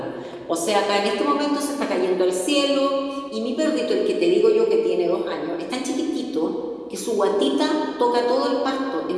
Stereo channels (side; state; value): both; identical; correlation 1.00